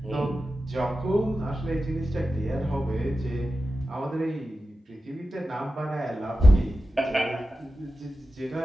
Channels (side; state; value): both; normal; correlation 0.92